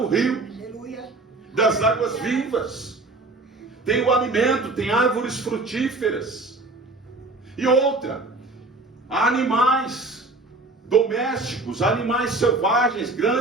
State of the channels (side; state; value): left; quieter; 3.2 dB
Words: rio das águas vivas. Tem o alimento, tem árvores frutíferas. E outra, há animais domésticos, animais selvagens,